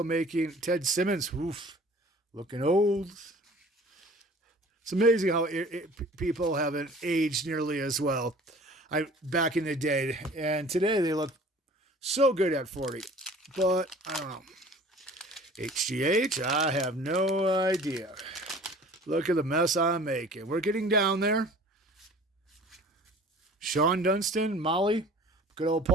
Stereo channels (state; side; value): normal; both; correlation 0.47